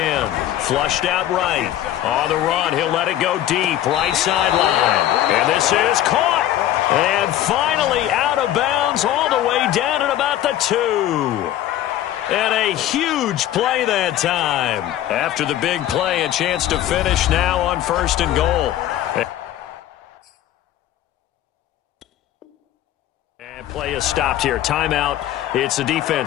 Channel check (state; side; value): quieter; right; 12.7 dB